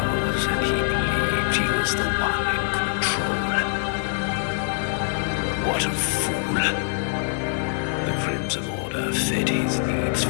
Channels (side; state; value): right; silent; digital silence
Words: and he believed he was the one in control. What a fool. The Crimson Order fed his needs